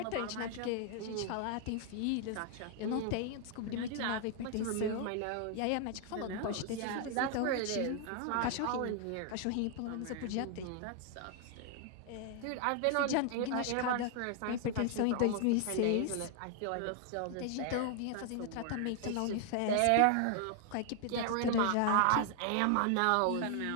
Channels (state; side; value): different; both; correlation 0.00